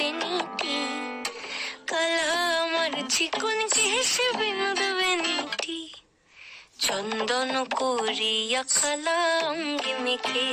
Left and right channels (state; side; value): identical; both; correlation 1.00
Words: কালা আমার চিকন কেশে বিনোদ বেনিটি। চন্দন করিয়া কালা অঙ্গে